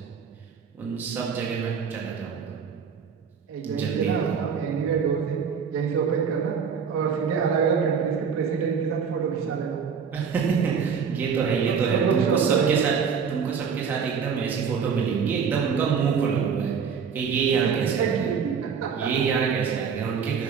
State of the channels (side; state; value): left; quieter; 6.4 dB